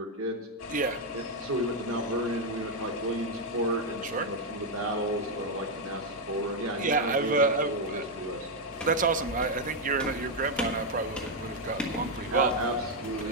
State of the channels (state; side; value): normal; both; correlation 0.01